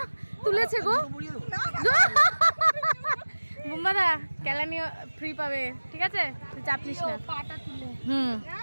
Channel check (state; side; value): inverted; both; correlation -1.00